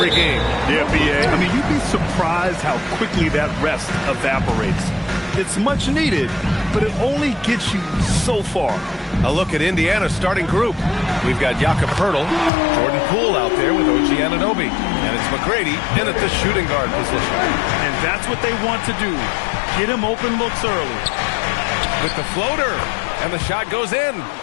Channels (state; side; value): drops out; right; at 12.5 s